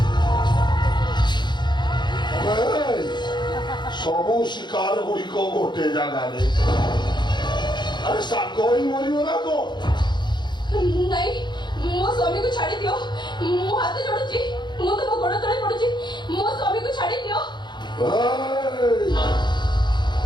ସବୁ ଶିକାର ଗୁଡ଼ିକ ଗୋଟେ ଜାଗାରେ ଆରେ ସାଙ୍ଗ ହିଁ ମରିବ ନା କଣ ନାଇଁ ମୋ ସ୍ୱାମୀକୁ ଛାଡି ଦିଅ ମୁଁ ହାତ ଯୋଡୁଛି ମୁଁ ତମ ଗୋଡ ତଳେ ପଡୁଛି ମୋ ସ୍ୱାମୀକୁ ଛାଡି ଦିଅ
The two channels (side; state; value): right; late; 0.22 ms